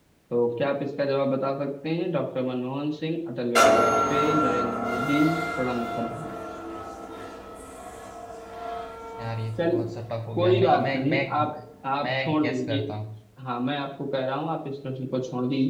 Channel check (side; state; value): both; identical; correlation 1.00